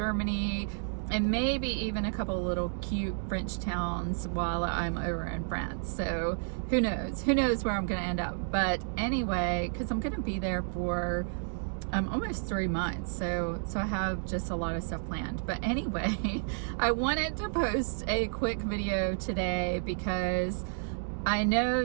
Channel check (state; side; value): silent; left; digital silence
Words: and maybe even a couple little cute French towns while I'm over in France. So who knows where I'm gonna end up. But anyway, because I'm gonna be there for almost 3 months, so I have just a lot of stuff planned. But anyway, I wanted to post a quick video today because I know